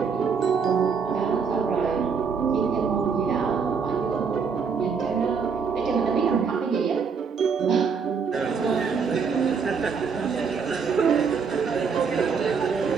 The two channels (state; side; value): quieter; left; 5.8 dB